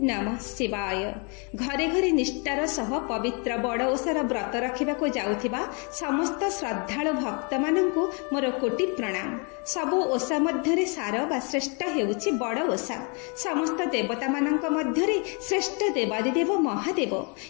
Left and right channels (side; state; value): right; quieter; 35.0 dB